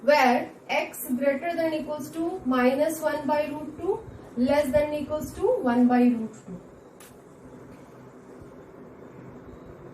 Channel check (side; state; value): both; identical; correlation 1.00